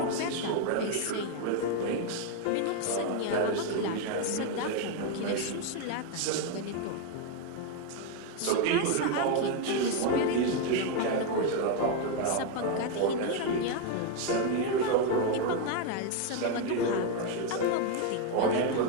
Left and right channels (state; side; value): different; both; correlation 0.01